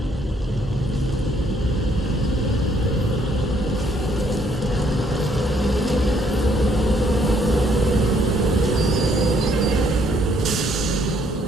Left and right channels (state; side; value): normal; both; correlation 0.67